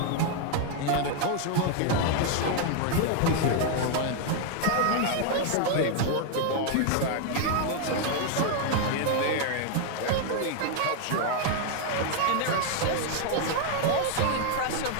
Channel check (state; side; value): different; both; correlation 0.01